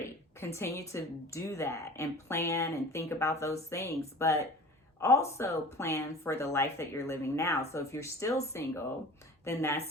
Continue to do that and plan and think about those things, but also plan for the life that you're living now. So if you're still single, then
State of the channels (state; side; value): normal; both; correlation 0.40